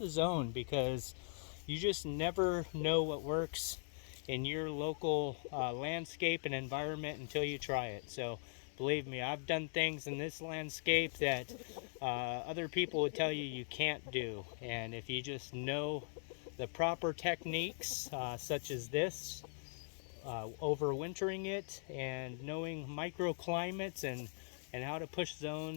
zone, because you just never know what works in your local landscape and environment until you try it. So believe me, I've done things in this landscape that other people would tell you you can't do. And if you just know the proper techniques, such as this, overwintering it and knowing microclimates and how to push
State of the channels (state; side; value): silent; right; digital silence